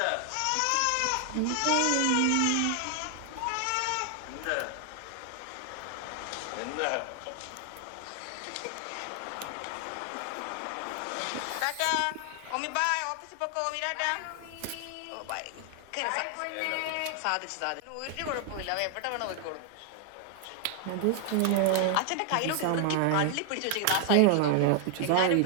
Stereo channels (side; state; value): both; different; correlation 0.00